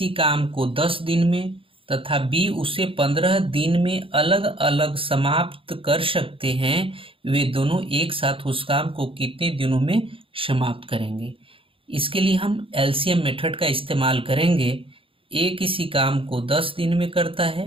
काम को 10 दिन में तथा बी उसे 15 दिन में अलग अलग समाप्त कर सकते हैं। वे दोनों एक साथ उस काम को कितने दिनों में समाप्त करेंगे? इसके लिए हम एलसीएम मेथड का इस्तेमाल करेंगे। ए किसी काम को 10 दिन में करता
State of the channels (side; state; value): left; late; 0.26 ms